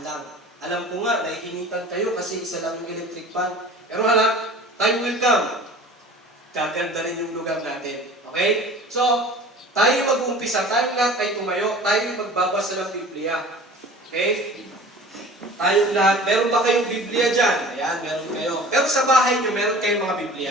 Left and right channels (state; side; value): normal; both; correlation 0.42